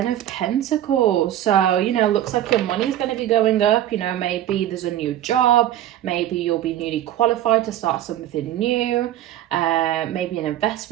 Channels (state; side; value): quieter; left; 12.4 dB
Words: of Pentacles. So, you know, looks like your money's going to be going up. You know, maybe there's a new job. Maybe you'll be newly qualified to start something new. Maybe an